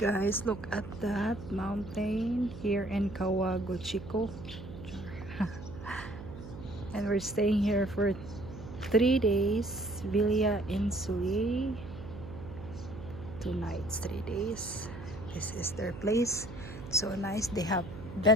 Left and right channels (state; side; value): noise; right; hum, 12 dB below the sound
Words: look at that mountain here in Kawaguchiko. And we're staying here for 3 days. Villa Insuli. 2 nights, 3 days. This is their place. So nice. They have